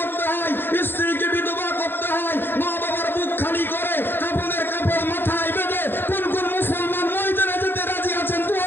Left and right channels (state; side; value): late; right; 0.10 ms